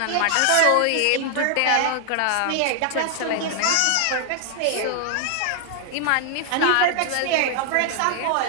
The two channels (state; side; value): different; both; correlation 0.00